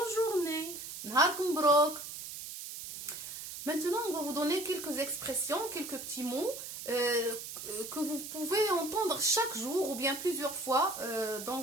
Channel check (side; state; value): right; noise; hiss, 9 dB below the sound